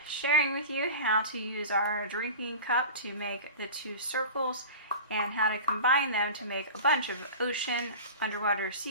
sharing with you how to use our drinking cup to make the two circles and how to combine them to make a bunch of ocean, underwater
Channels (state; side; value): inverted; both; correlation -0.34